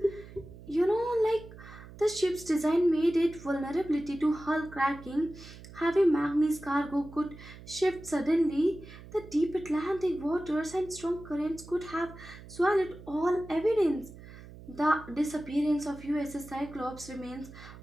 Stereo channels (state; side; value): noise; right; hum, 17 dB below the sound